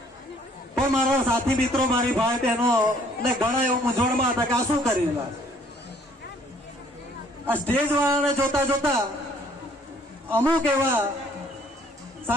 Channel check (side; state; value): both; normal; correlation 0.61